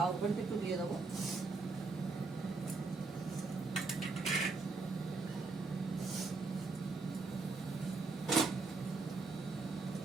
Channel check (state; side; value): quieter; left; 3.9 dB